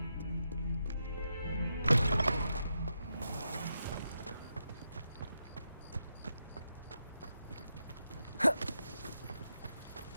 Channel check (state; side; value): inverted; both; correlation -0.85